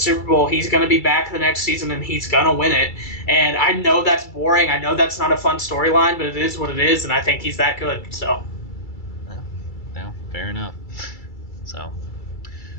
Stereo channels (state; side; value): late; right; 2.3 ms